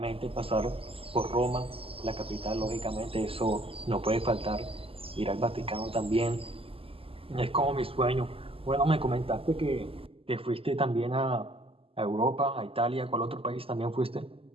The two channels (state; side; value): late; left; 0.27 ms